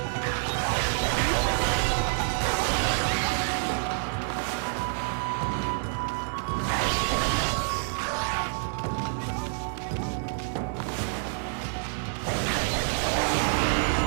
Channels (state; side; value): silent; left; 60 dB below the other